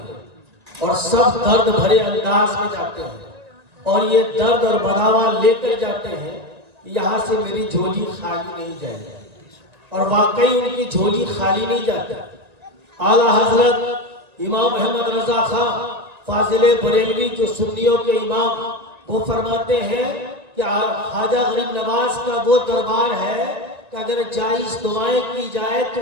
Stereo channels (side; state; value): left; late; 1.8 ms